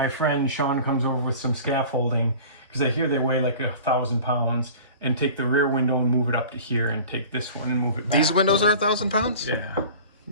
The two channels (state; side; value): inverted; both; correlation -0.41